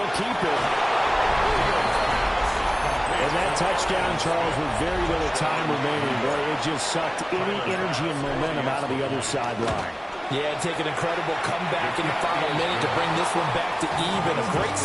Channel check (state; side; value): identical; both; correlation 1.00